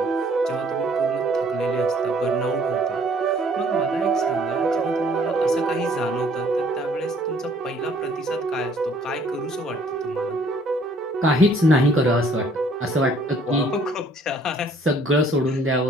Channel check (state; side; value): normal; both; correlation 0.60